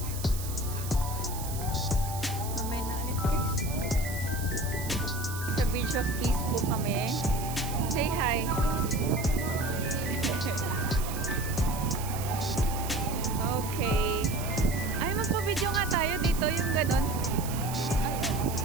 Mamaya na ulit guys. Sa Bridge of Peace po kami. Say hi. Okay. Ay, magpa-video nga tayo dito, yung ganon.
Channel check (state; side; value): noise; right; hiss, 10 dB below the sound